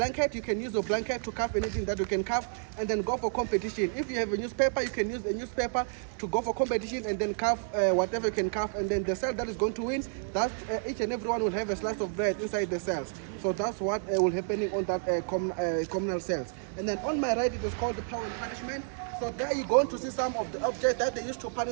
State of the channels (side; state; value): left; silent; digital silence